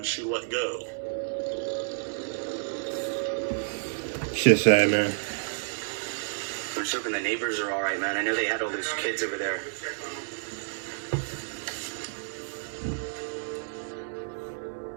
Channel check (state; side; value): silent; left; digital silence